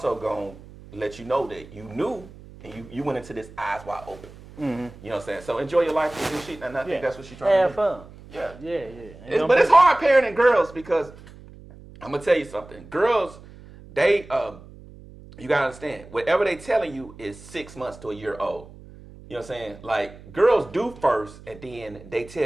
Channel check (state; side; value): noise; right; hum, 19 dB below the sound